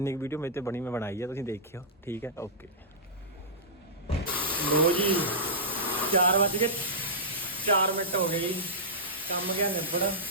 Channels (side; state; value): both; normal; correlation -0.15